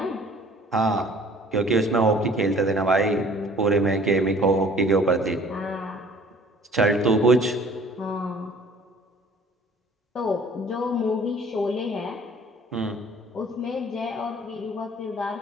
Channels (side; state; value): both; normal; correlation 0.52